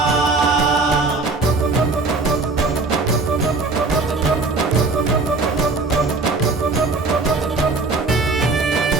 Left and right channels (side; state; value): left; quieter; 3.7 dB